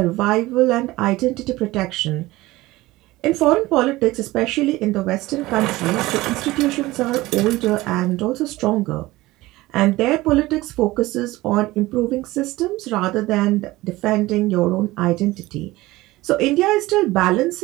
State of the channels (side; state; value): left; quieter; 18.9 dB